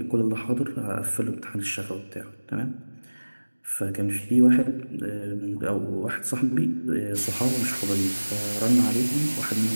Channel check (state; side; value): inverted; both; correlation -1.00